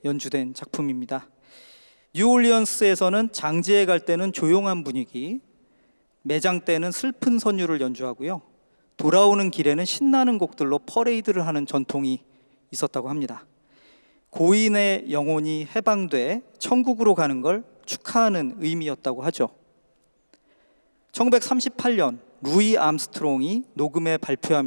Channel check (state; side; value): inverted; both; correlation -1.00